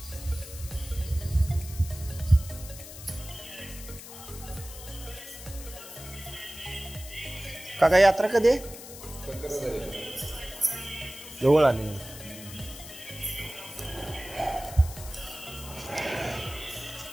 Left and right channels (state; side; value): noise; left; hiss, 14 dB below the sound